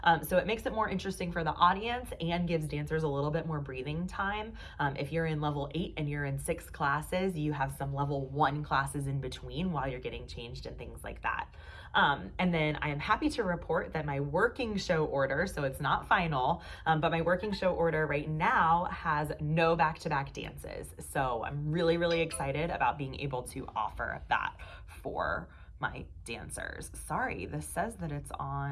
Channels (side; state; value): both; identical; correlation 1.00